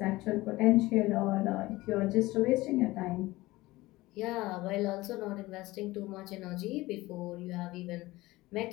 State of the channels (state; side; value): quieter; right; 19.3 dB